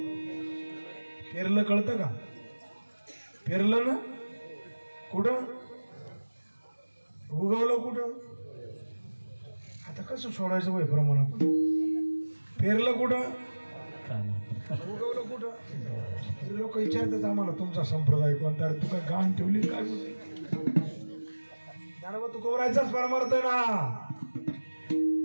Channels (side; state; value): both; inverted; correlation -1.00